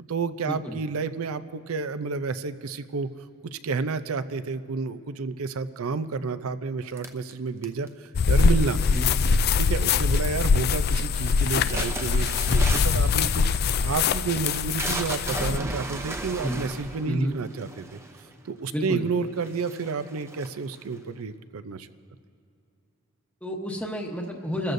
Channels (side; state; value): both; normal; correlation 0.50